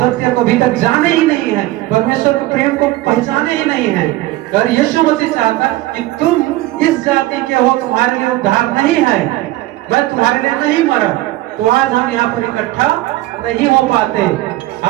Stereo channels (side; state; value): left; quieter; 17.3 dB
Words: को अभी तक जाने ही नहीं है, परमेश्वर के प्रेम को पहचाने ही नहीं है। अगर यीशु मसीह चाहता कि तुम इस जाति के हो, तुम्हारे लिए उद्धार नहीं है, मैं तुम्हारे लिए नहीं मरा, तो आज हम यहाँ पर इकट्ठा नहीं हो पाते।